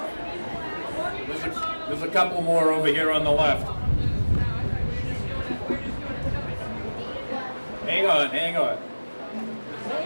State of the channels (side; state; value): both; inverted; correlation -1.00